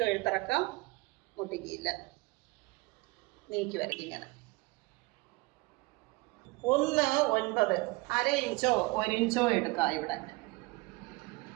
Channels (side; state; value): left; quieter; 24.3 dB